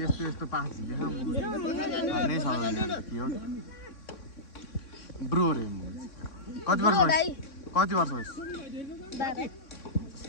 यस्तो यस्तो पास झिकेँ भन्नै सक्दैन के हो ब्रो रे कति वर्ष भइस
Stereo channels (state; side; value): late; right; 3.6 ms